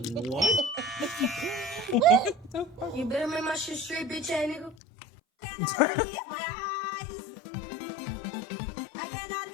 You better make my shit straight, bitch ass nigga.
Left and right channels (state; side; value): drops out; right; at 4.8 s